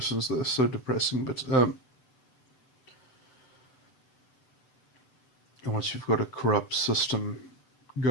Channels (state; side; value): late; right; 7.8 ms